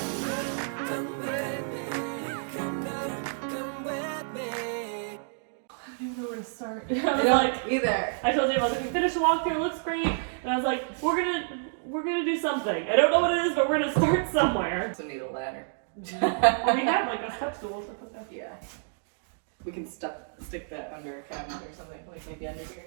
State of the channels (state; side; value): silent; left; digital silence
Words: Start. I don't either. I told you I was like, we finished the walkthrough, it looks great, and I was like, we're gonna do something. I don't know what it is, but we're gonna start somewhere. Also need a ladder. We have like a step stool to put that. Yeah. We can stick that under a cabinet or something, like maybe under here.